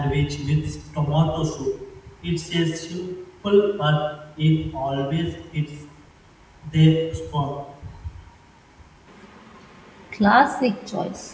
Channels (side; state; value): both; identical; correlation 1.00